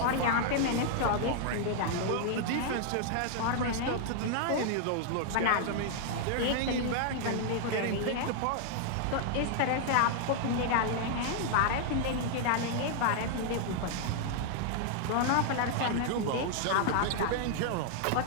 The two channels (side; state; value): both; different; correlation 0.00